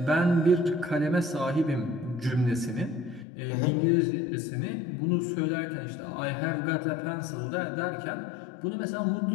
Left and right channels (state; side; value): drops out; right; at 3.2 s